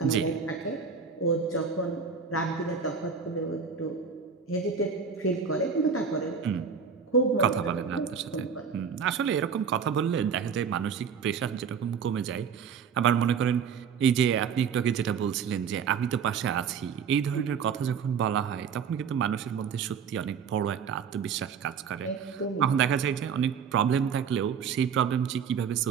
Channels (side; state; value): left; quieter; 6.5 dB